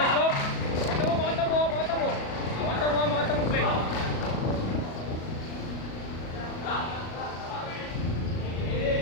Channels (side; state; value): right; late; 37 ms